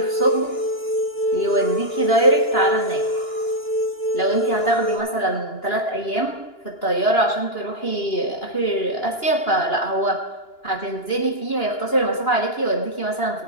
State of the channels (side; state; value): right; late; 2.9 ms